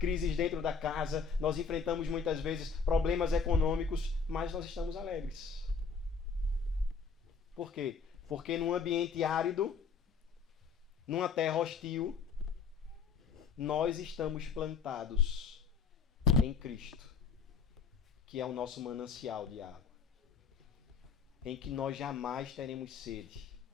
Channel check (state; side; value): quieter; right; 5.4 dB